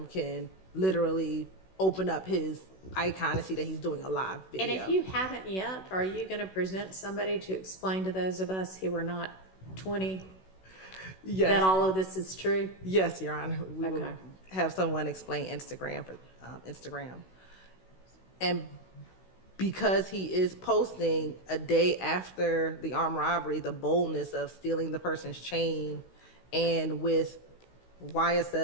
can literally open up his icon and see that he's doing a live video. And if you haven't yet, are you going to present somebody to explain to those of us who are not 20 Yes. that all of this is true? Yes, Your Honor. We will Okay. have someone explain Instagram for Instagram. And because he is posting a day after the armed robbery, the boldness of stealing the person's chain and with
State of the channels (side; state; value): right; late; 16 ms